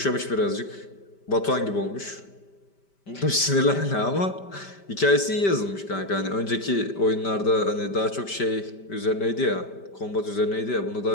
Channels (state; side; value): late; right; 5.1 ms